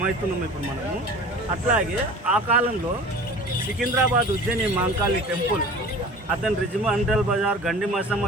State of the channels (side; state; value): both; normal; correlation 0.41